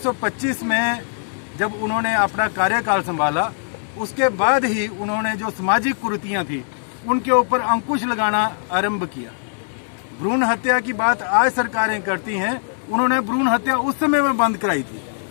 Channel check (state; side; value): silent; right; digital silence